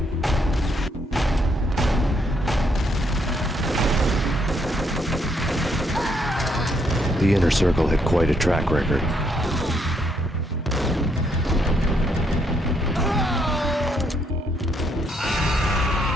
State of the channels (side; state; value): both; normal; correlation 0.73